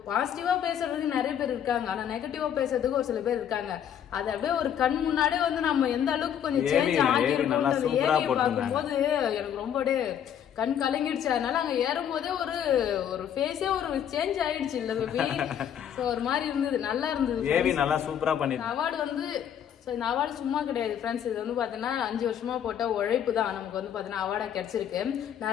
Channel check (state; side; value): quieter; right; 9.3 dB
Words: பாசிட்டிவா பேசுறதுக்கு நிறைய பேர் இருக்காங்க, ஆனா நெகட்டிவா பேசுறதுக்கு ஒரு சில பேர் இருக்காங்க. அது அப்படியே ஒரு கண் முன்னாடியே வந்து நம்ம எந்த அளவுக்கு கொஞ்சம் சேஞ்ச் ஆகிருக்கோம் ஏரியை பார்க்கும்போது எனக்கு ரொம்ப கண் கலங்கிடுச்சு. அதனால அங்க ஏறும் போதே ஒரு ஃபேஸே ஒரு சேஞ்ச் ஆயிடுச்சு இல்ல பேபி. சோ ஒரு மாதிரி இருந்தது, நல்லா இருந்தது. நல்லா சூப்பரா பண்ணி அவார்டு வந்து இந்த அவார்டு சும்மா கிடையாது ஃப்ரெண்ட்ஸ். இது வந்து பாத்தீங்கன்னா 5 வருஷமா போட்ட உழைப்பு தான் நமக்கு வந்து பாத்தீங்கன்னா அவார்டா கிடைச்சிருக்கு.